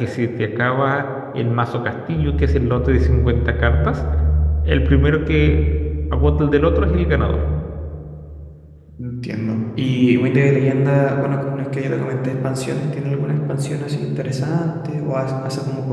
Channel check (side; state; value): both; identical; correlation 1.00